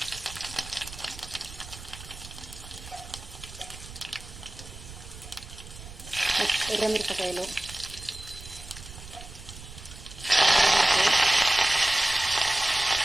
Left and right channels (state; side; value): noise; right; rumble, 15 dB below the sound